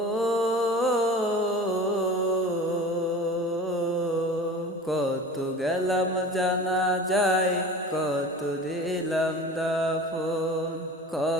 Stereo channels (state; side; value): normal; both; correlation 0.37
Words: কত গেলাম জানা যায়, কত দিলাম দাফন।